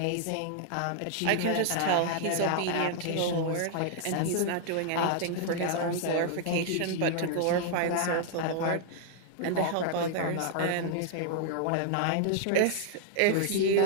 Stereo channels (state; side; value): different; both; correlation 0.00